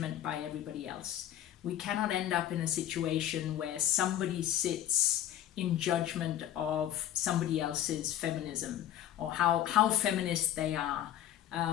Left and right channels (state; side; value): quieter; right; 11.7 dB